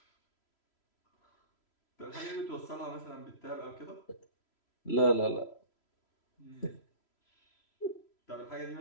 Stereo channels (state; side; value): late; right; 3.0 ms